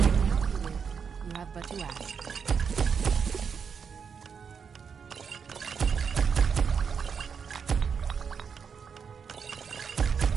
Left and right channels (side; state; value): left; quieter; 6.4 dB